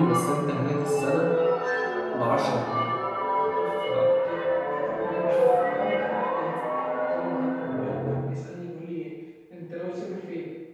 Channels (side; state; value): both; identical; correlation 1.00